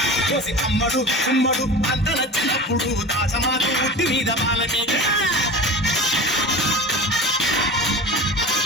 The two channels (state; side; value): normal; both; correlation 0.34